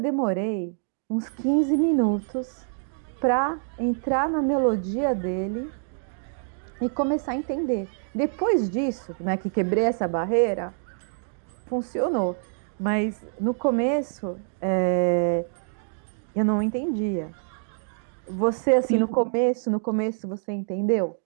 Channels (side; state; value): left; silent; digital silence